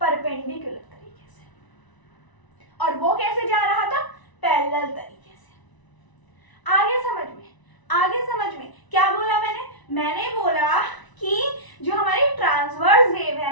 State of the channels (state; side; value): late; right; 1.0 ms